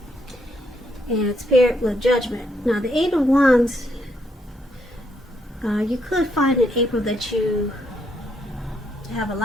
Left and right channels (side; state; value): both; normal; correlation 0.75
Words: and it's paired with Judgment. Now the Eight of Wands, you could find in April that you have a